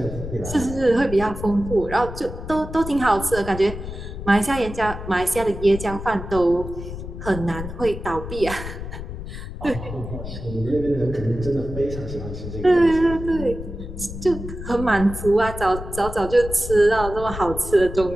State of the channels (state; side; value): noise; left; rumble, 9 dB below the sound